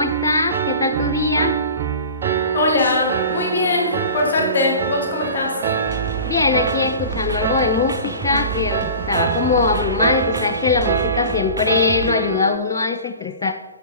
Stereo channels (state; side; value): inverted; both; correlation -0.38